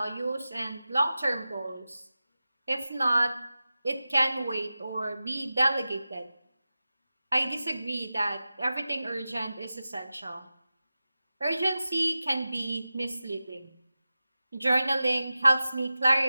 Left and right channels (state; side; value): inverted; both; correlation -0.94